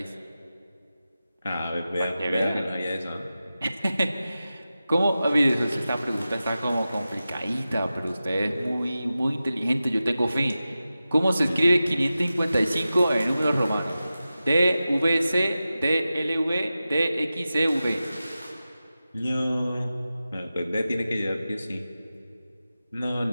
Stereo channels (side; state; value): both; inverted; correlation -0.94